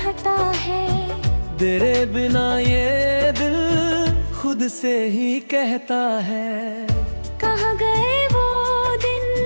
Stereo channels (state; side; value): inverted; both; correlation -1.00